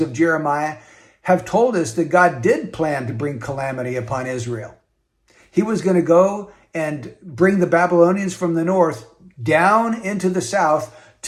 of Jeremiah have told us that God did plan to bring calamity upon Israel. He was going to go and bring the Babylonians from the north down into the south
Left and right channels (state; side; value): identical; both; correlation 1.00